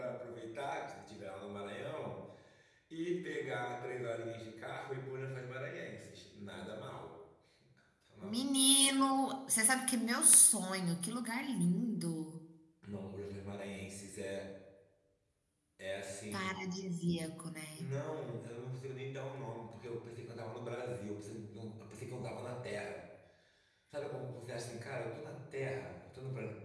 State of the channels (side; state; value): both; identical; correlation 1.00